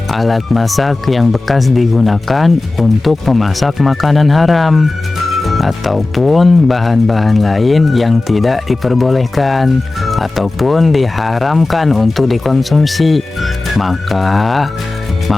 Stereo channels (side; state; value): right; quieter; 3.1 dB